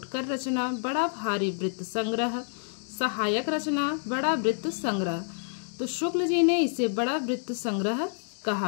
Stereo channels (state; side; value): silent; right; digital silence